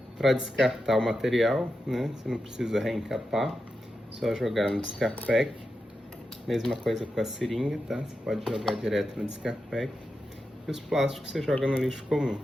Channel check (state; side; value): normal; both; correlation 0.89